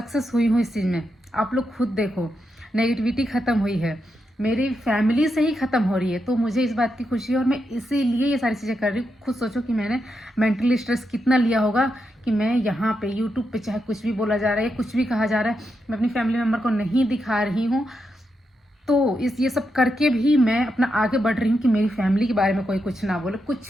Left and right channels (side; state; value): both; normal; correlation 0.84